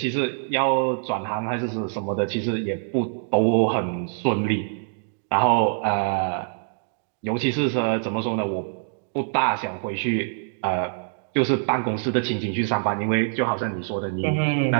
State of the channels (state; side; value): silent; left; digital silence